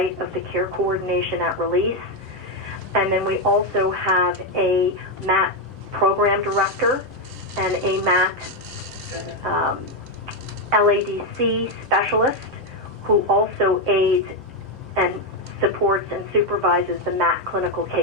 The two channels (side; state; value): both; normal; correlation 0.05